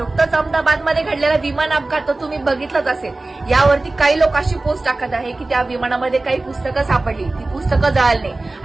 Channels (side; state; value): left; quieter; 3.1 dB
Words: अहमदाबादमध्ये घडलेला विमान अपघात तर तुम्ही बघितलंच असेल. यावरती काही लोक अशी पोस्ट टाकत आहे की त्या विमानामध्ये काही पुस्तकं सापडली, ती पुस्तकं जळाली नाही.